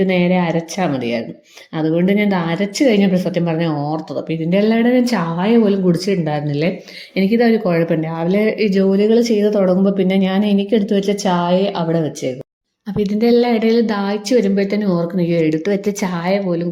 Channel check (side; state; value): both; identical; correlation 1.00